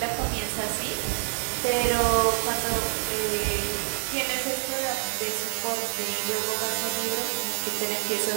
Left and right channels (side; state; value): left; silent; 60 dB below the other